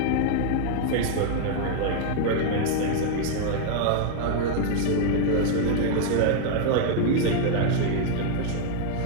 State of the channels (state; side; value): different; both; correlation 0.00